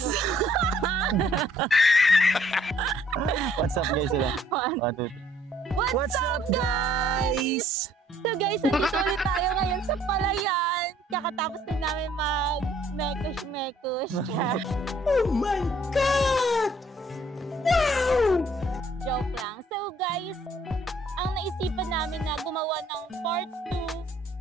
What's up guys? What's up guys? So guys, nandito ulit tayo ngayon sa Palayan. Kakatapos din namin mag-mekush. Oh my God! Wow! Joke lang. So guys, ang naisipan namin na gumawa ng part 2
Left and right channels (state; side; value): normal; both; correlation 0.61